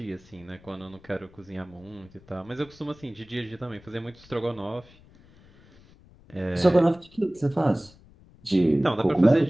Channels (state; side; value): noise; left; rumble, 26 dB below the sound